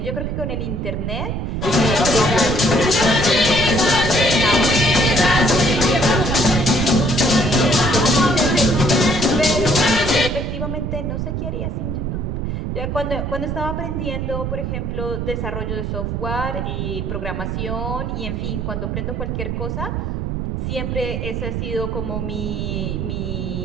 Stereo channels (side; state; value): right; noise; rumble, 3 dB below the sound